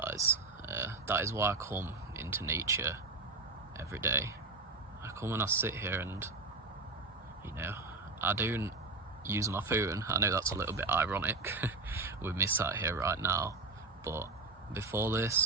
That is why I come into nature every day. I come and I sit here and, you know, I don't use my phone. I know that's a little bit ironic with me sat here right now, but before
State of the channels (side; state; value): left; quieter; 3.6 dB